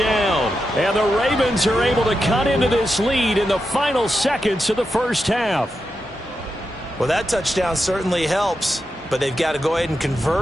And the Ravens are able to cut into this lead in the final seconds of the first half. Well, that touchdown certainly helps, but they've got to go ahead and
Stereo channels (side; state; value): both; normal; correlation 0.88